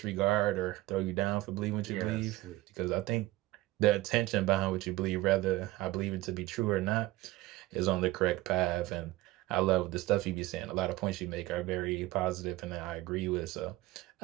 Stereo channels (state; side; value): quieter; left; 18.1 dB